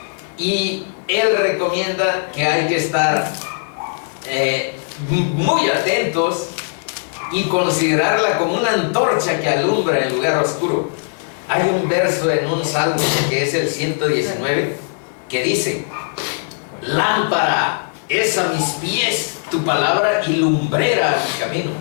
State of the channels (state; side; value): silent; right; 67 dB below the other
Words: Y él recomienda que hay que estar muy atentos y considerarla como una antorcha que alumbra en lugar oscuro. Hay un verso en un salmo que es el 119 que dice: lámpara es a mis pies tu palabra y lumbrera a mi camino.